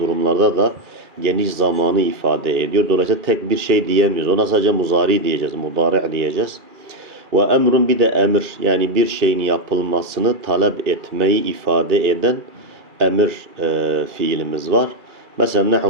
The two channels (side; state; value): left; late; 2.4 ms